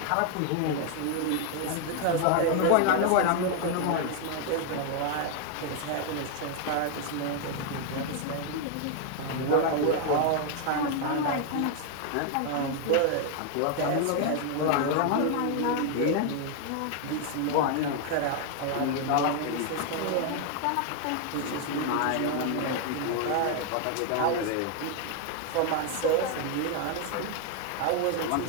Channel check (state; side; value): different; both; correlation 0.00